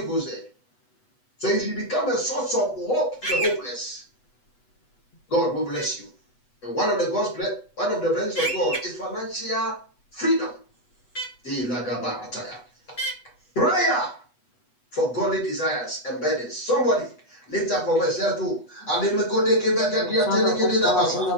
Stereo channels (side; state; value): right; late; 8.1 ms